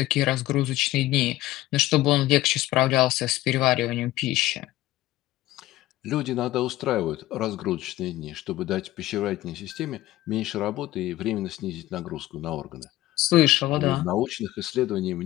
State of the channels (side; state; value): right; quieter; 16.2 dB